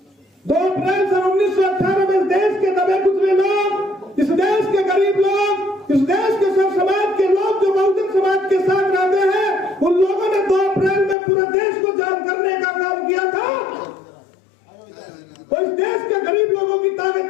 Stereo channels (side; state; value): right; drops out; at 11.2 s